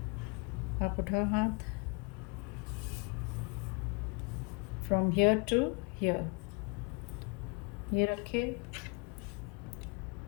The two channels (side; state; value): right; quieter; 32.4 dB